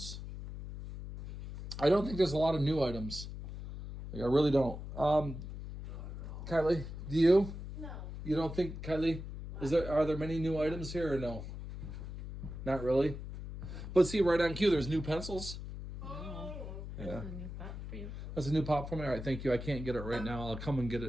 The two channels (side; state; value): left; noise; hum, 9 dB below the sound